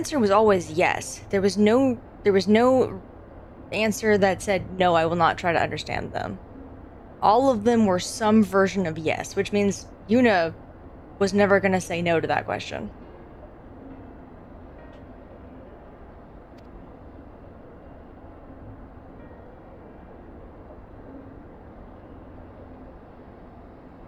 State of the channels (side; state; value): both; identical; correlation 1.00